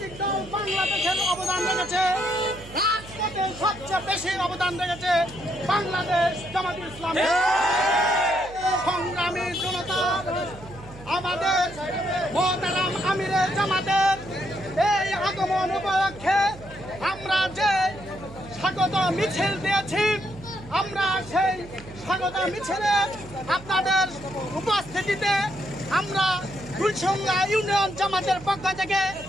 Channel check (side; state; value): right; noise; hum, 17 dB below the sound